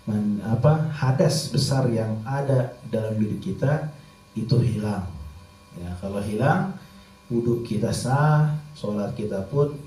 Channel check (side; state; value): both; identical; correlation 1.00